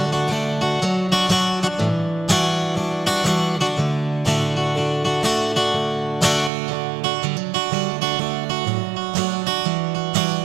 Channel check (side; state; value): left; drops out; at 6.5 s